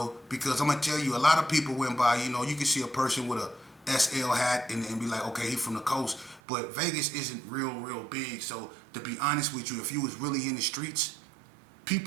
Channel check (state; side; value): drops out; left; at 6.4 s